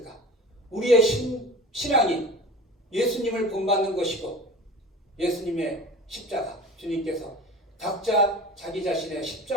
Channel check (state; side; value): normal; both; correlation 0.37